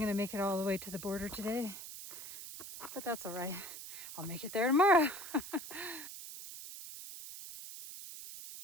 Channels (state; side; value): noise; right; hiss, 11 dB below the sound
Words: gonna make it all the way to the border today, but that's all right. I'll make it there tomorrow.